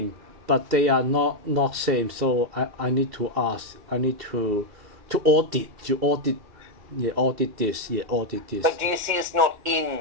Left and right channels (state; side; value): late; left; 2.1 ms